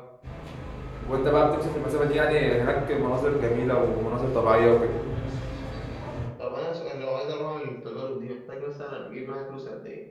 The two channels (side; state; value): both; identical; correlation 1.00